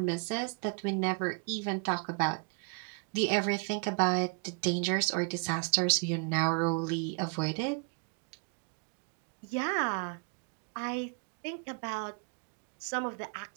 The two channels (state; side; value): quieter; left; 38.1 dB